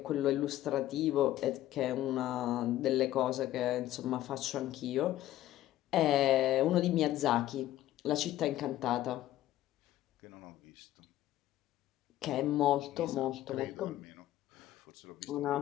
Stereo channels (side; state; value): right; quieter; 14.0 dB